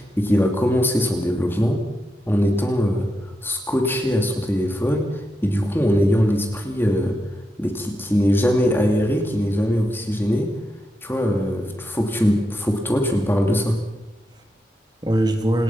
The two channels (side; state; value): both; normal; correlation 0.86